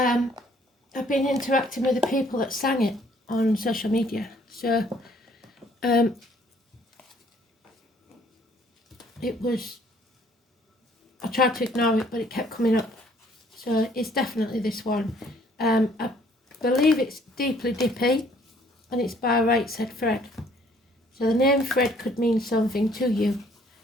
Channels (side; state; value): both; normal; correlation 0.61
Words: been interacting with the people that sang it on social media. So it was, I tried to ignore it, but it kept coming up. So it's definitely this one. I believe it's Deeply Dippy, and it's by Right Said Fred. So the name Fred could mean something to you.